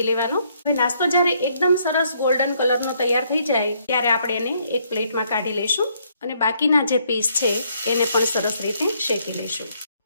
લેવાનો. હવે નાસ્તો જ્યારે એકદમ સરસ ગોલ્ડન કલરનો તૈયાર થઈ જાય ત્યારે આપણે એને એક પ્લેટમાં કાઢી લઈશું અને બાકીના જે પીસ છે એને પણ સરસ રીતે શેકી લઈશું.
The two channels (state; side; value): inverted; both; correlation -0.70